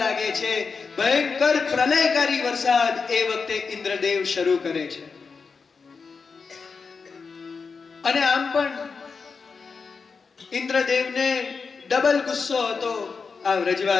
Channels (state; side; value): quieter; right; 5.1 dB